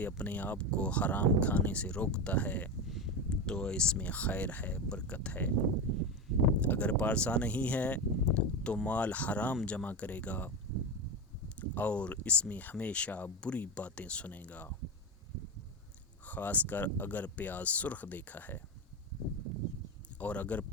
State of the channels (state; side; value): normal; both; correlation 0.17